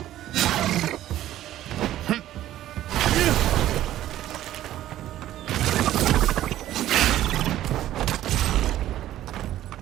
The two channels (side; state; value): left; quieter; 13.3 dB